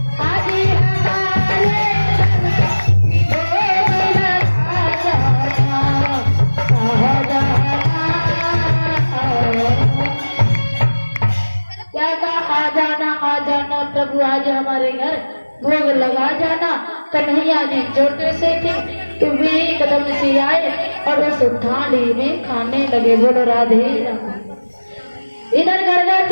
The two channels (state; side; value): inverted; both; correlation -1.00